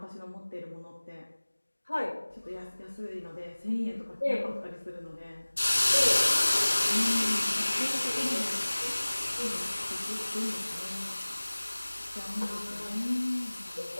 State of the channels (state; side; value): inverted; both; correlation -1.00